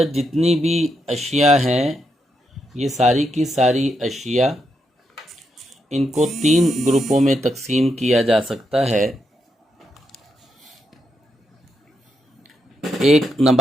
جتنی بھی اشیاء ہیں، یہ ساری کی ساری اشیاء، ان کو 3 گروپوں میں تقسیم کیا جا سکتا ہے۔ ایک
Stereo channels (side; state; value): both; normal; correlation 0.81